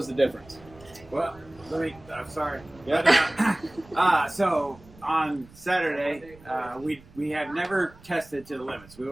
the difference? Well, I'm sorry. Yeah. So on Saturday, we have never tested to the limits. We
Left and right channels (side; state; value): right; noise; rumble, 23 dB below the sound